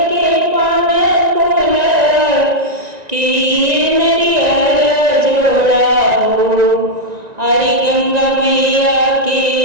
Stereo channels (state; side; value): late; left; 1.9 ms